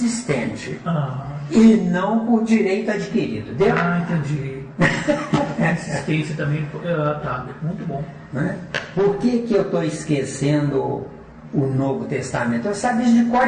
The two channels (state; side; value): identical; both; correlation 1.00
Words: E não por direito adquirido. Deu? Entendi. Insistência também. Tá, muito bom. Né? Por que eu estou esquecendo o Novo Testamento? Eu sabia de cor